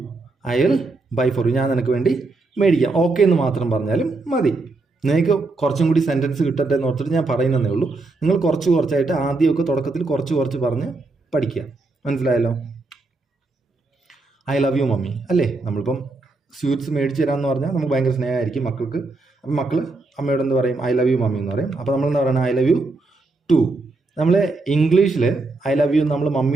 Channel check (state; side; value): quieter; left; 3.4 dB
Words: I will buy for you, ഞാൻ നിനക്ക് വേണ്ടി മേടിക്കാം. ഓക്കെ എന്ന് മാത്രം പറഞ്ഞാലും മതി. നിങ്ങൾക്ക് കുറച്ചും കൂടി സെൻറ്റൻസ് കിട്ടട്ടെ എന്ന് ഓർത്തിട്ട് ഞാൻ പറയുന്നതേ ഉള്ളൂ. നിങ്ങൾ കുറച്ചായിട്ട് ആദ്യമൊക്കെ തുടക്കത്തിൽ കുറച്ച് പറഞ്ഞ് പഠിക്കുക. മനസ്സിലായല്ലോ? ഐ ലവ് യു മമ്മി അല്ലേ? നമ്മളിപ്പം സ്വീറ്റ്സ് മേടിച്ച് തരാമെന്ന് പറഞ്ഞാൽ നമുക്ക് ഭയങ്കര സ്നേഹമായിരിക്കും മക്കൾക്ക്. അപ്പം മക്കൾ അമ്മയോട് എന്ത് പറയും? ഐ ലവ് യു മമ്മി എന്ന് പറയും. അപ്പോൾ നമ്മളെന്താ പറയുന്നത്? I love you too. നമ്മൾ ഇംഗ്ലീഷിൽ ഐ ലവ് യു നമ്മൾ